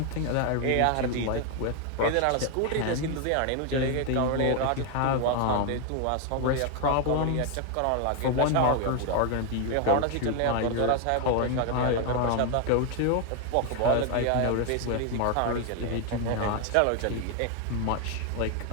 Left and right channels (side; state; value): both; different; correlation 0.01